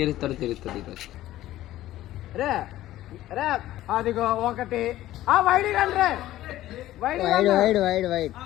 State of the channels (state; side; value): quieter; right; 14.7 dB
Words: తెలుస్తుంది ఈరోజు. రే రే అదిగో ఒకటి వైడ్ రండి wide wide wide wide